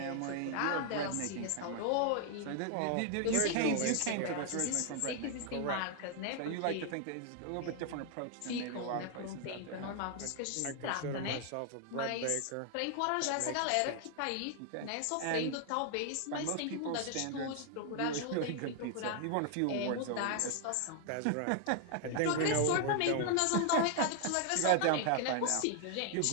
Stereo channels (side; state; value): both; different; correlation 0.00